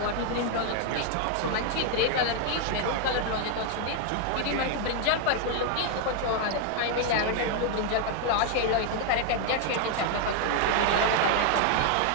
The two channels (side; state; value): both; different; correlation 0.00